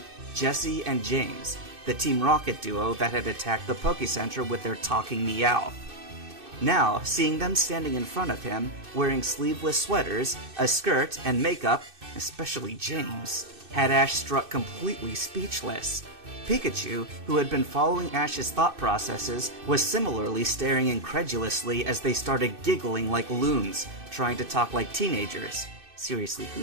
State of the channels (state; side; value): late; left; 2.6 ms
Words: Jesse and James, the Team Rocket duo that had attacked the Poké Center with their talking Meowth. Now, seeing them standing in front of him, wearing sleeveless sweaters, a skirt, and makeup, especially James, had Ash struck completely speechless. Pikachu, who had been following Ash's thought processes, was similarly staring incredulously as they started giggling like loons, trying to talk like teenagers. Seriously,